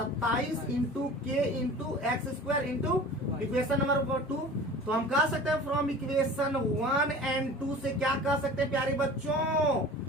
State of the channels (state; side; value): normal; both; correlation 0.40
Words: into K into x square into equation number 2। तो हम कह सकते हैं फ्रॉम इक्वेशन 1 एंड 2 से क्या कह सकते हैं प्यारे बच्चों,